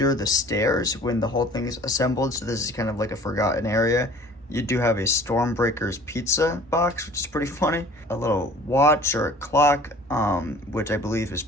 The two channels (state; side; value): normal; both; correlation 0.48